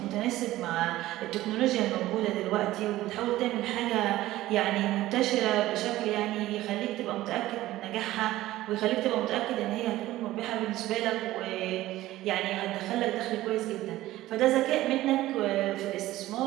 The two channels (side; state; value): left; quieter; 15.9 dB